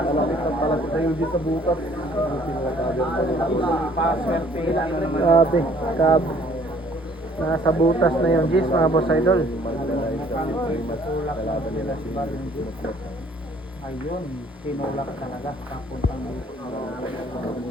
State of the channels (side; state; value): both; normal; correlation 0.59